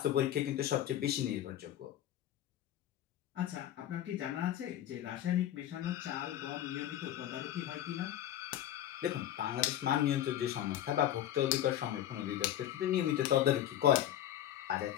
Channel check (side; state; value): right; quieter; 11.9 dB